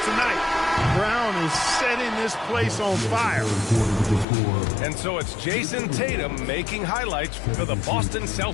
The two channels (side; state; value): right; drops out; at 4.2 s